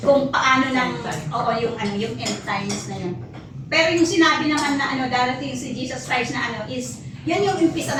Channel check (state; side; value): identical; both; correlation 1.00